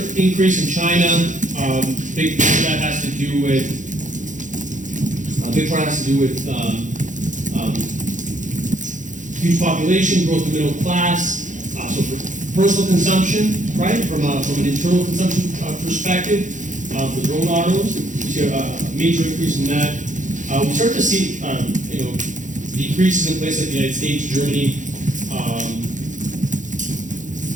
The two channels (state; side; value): late; left; 0.36 ms